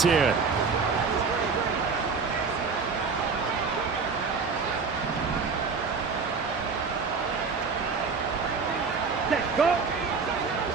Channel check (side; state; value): left; quieter; 5.0 dB